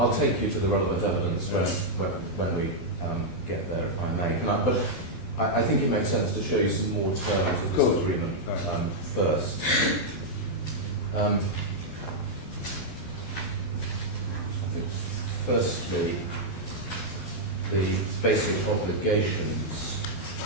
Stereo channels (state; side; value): late; right; 12 ms